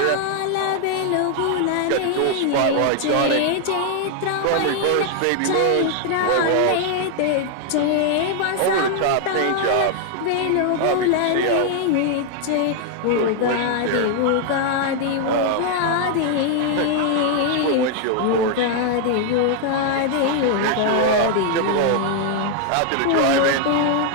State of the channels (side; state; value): both; different; correlation 0.00